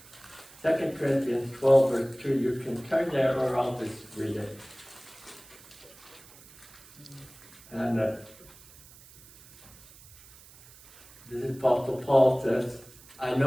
2 Corinthians 12, verse 2. You can turn there or I'll just read it. And this is Apostle Paul says, I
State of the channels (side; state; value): right; noise; hiss, 22 dB below the sound